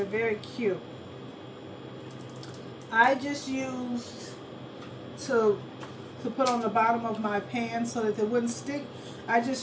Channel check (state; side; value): identical; both; correlation 1.00